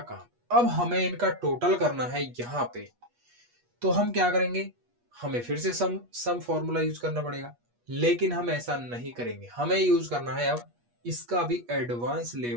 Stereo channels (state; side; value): late; left; 8.3 ms